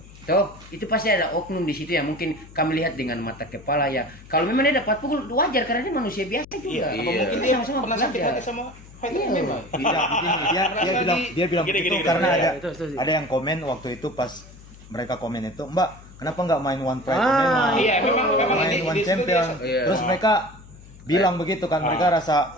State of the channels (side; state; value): left; noise; hum, 20 dB below the sound